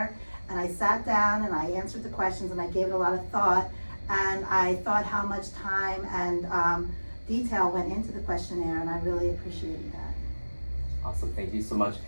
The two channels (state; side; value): inverted; both; correlation -1.00